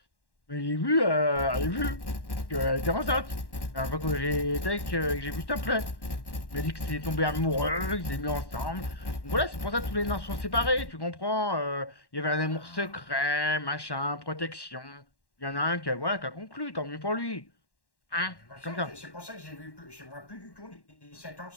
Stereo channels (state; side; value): late; right; 1.1 ms